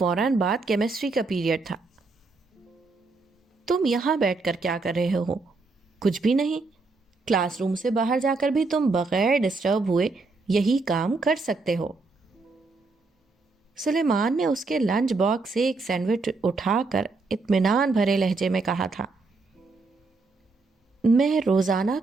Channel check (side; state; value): left; quieter; 3.8 dB